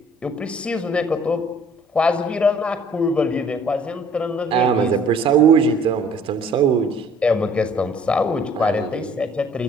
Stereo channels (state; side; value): normal; both; correlation 0.55